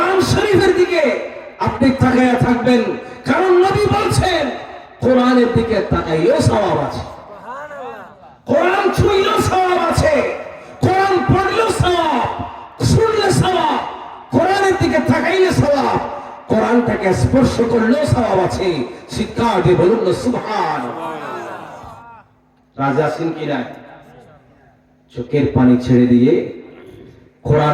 শরীফের দিকে আপনি তাকায়া থাকবেন। কারণ নবী বলছেন কোরআনের দিকে তাকাইলেও সওয়াব আছে, কোরআন ছুঁইলেও সওয়াব আছে, কোরআন পড়লেও সওয়াব, শুনলে সওয়াব, কোরআনের দিকে তাকাইলে সওয়াব, কোরআনটাকে স্পর্শ করলেও সওয়াব আছে। শিক্ষা দিয়ে বলুন না সুবহানাল্লাহ। রাজা সিং কি নাই, চোখের পানি ছেড়ে দিয়ে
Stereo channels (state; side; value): identical; both; correlation 1.00